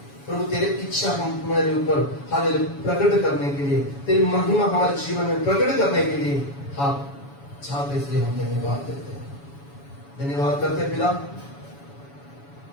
प्रभु तेरी इच्छा हमारे ऊपर हालेलुया प्रकट करने के लिए, तेरी महिमा हमारे जीवन में प्रकट करने के लिए आप चाहते, इसलिए हम धन्यवाद देते हैं। धन्यवाद करते पिता,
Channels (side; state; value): right; late; 7.1 ms